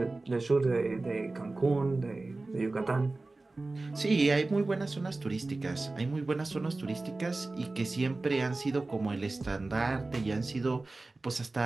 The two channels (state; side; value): quieter; left; 3.2 dB